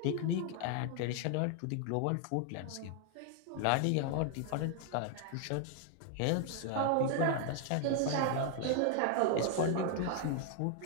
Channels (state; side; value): different; both; correlation 0.00